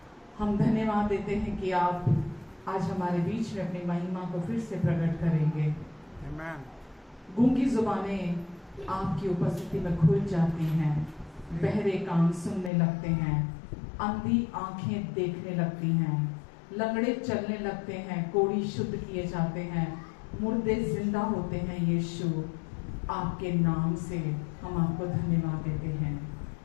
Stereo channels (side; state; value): right; drops out; at 12.7 s